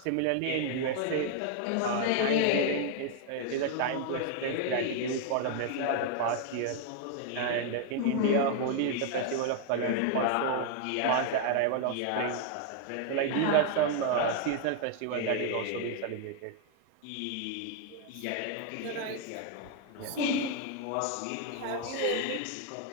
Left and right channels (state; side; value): different; both; correlation 0.00